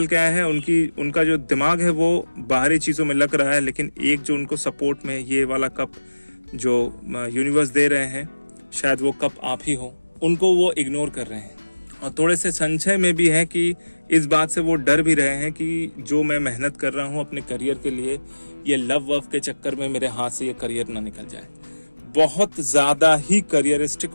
के आया है। उनका जो दिमाग है वो बाहरी चीजों में लग रहा है, लेकिन एक जो उनको सपोर्ट में ये वाला कप जो यूनिवर्स दे रहे हैं, शायद वो कप आप ही हो, उनको वो इग्नोर कर रहे हैं। और थोड़े से संशय में भी है कि इस बात से वो डर भी रहे हैं कि जो मैं मेहनत कर रहा हूँ अपने करियर के लिए, ये लव वव के चक्कर में मेरे हाथ से ये करियर ना निकल जाए। बहुत ज्यादा ही करियरिस्टिक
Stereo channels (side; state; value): both; inverted; correlation -1.00